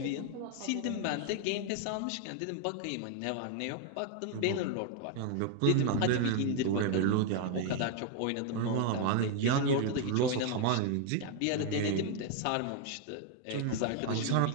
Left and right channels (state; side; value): different; both; correlation 0.00